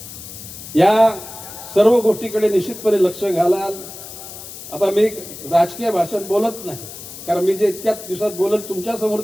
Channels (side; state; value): left; noise; hiss, 13 dB below the sound